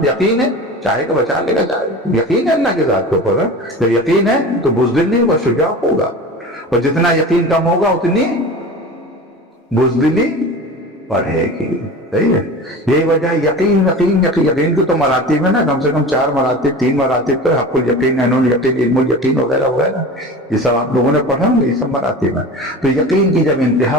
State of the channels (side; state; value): both; normal; correlation 0.34